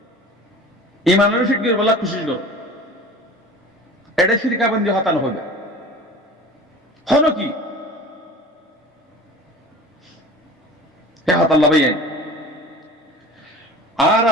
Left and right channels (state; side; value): normal; both; correlation 0.40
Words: ইমানের শিখে বলা কোশিশ করো এটা ফিরকাবন্দি হতানো হবে হন কি হতাল্লা ভাই আর